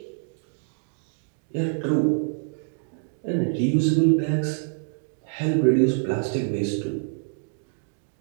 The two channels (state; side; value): silent; left; digital silence